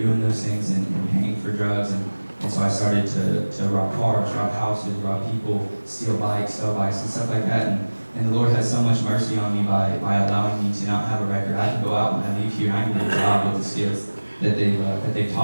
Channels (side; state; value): both; inverted; correlation -1.00